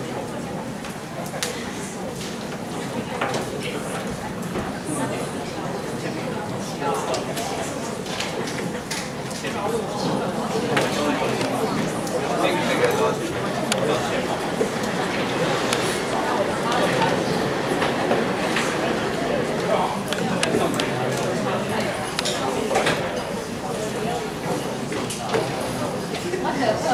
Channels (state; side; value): identical; both; correlation 1.00